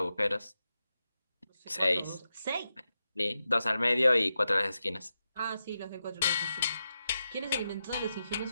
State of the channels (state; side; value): inverted; both; correlation -0.89